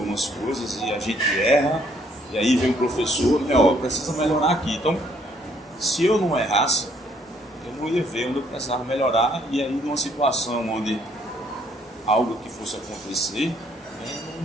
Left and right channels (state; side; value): normal; both; correlation 0.66